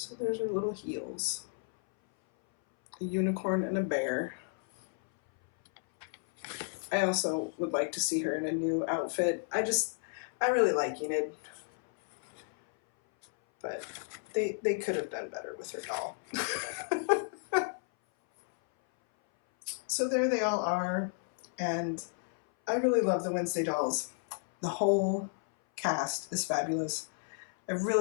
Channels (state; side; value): silent; right; 56 dB below the other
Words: there's her little heels. A unicorn and a bear. I also would like to see her in a new outfit. I really like Enid. But they could have done better with her doll. So there they all are, and I really love the Wednesday dolls. The whole cast is fabulous. I